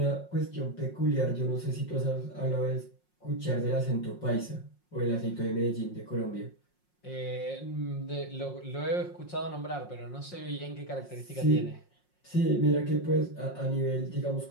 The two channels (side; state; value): right; late; 5.5 ms